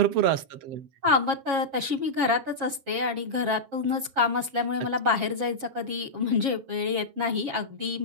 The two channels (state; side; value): late; left; 7.3 ms